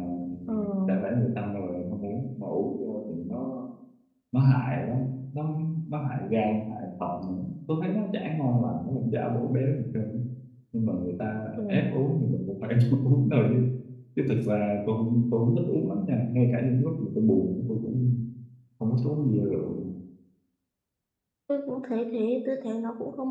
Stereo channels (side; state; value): both; identical; correlation 1.00